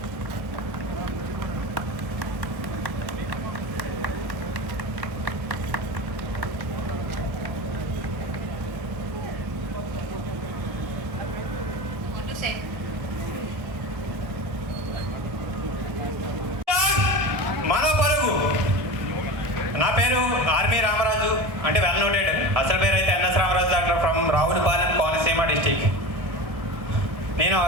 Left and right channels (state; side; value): late; left; 1.7 ms